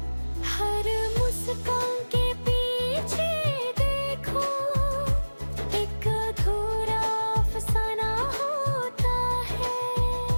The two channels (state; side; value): inverted; both; correlation -1.00